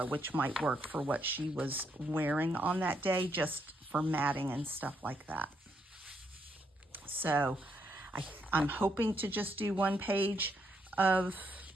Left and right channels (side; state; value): both; normal; correlation 0.76